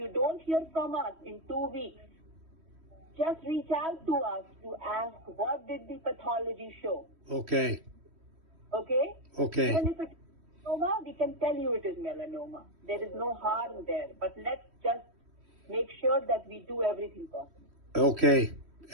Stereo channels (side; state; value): left; late; 3.1 ms